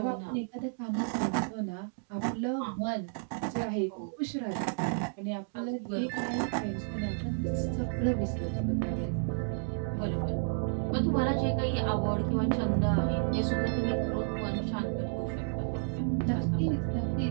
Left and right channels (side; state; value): left; silent; digital silence